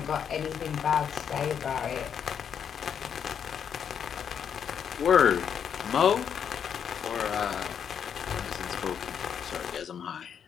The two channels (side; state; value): right; quieter; 7.9 dB